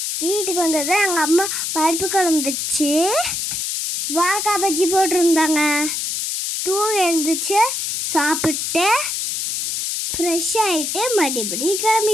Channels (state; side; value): noise; left; hiss, 2 dB below the sound